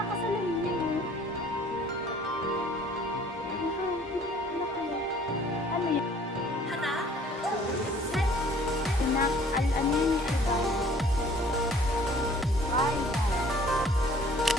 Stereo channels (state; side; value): normal; both; correlation 0.54